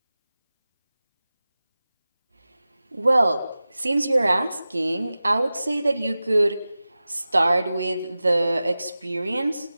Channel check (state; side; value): inverted; both; correlation -0.96